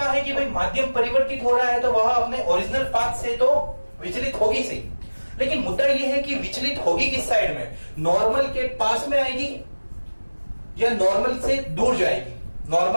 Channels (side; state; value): both; inverted; correlation -1.00